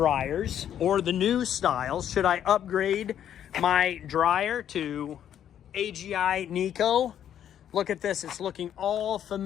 or the new styles. Should I upgrade my dryer to AGI NeCo? Look at this, it's looking all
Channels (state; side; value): quieter; right; 10.0 dB